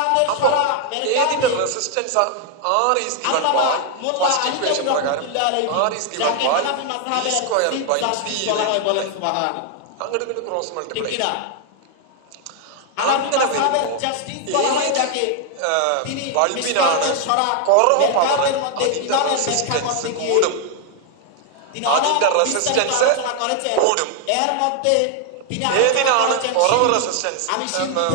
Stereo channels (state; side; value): different; both; correlation 0.00